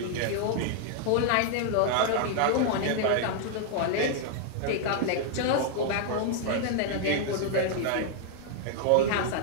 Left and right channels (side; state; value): both; different; correlation 0.00